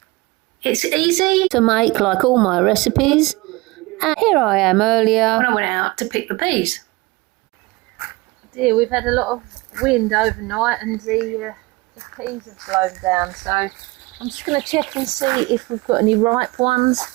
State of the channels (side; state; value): left; quieter; 22.9 dB